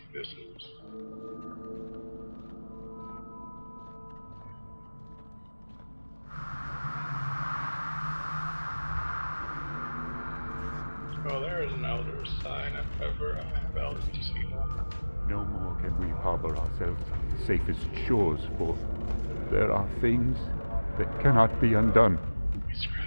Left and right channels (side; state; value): both; inverted; correlation -1.00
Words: this is. Oh, there is an elder sign if ever I have elders to see one. No more can we harbor ourselves on the safest shores, for there are things that cannot be undone. We